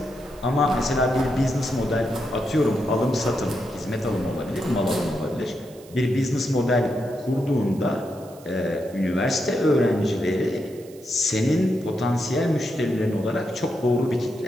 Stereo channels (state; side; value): noise; right; hiss, 24 dB below the sound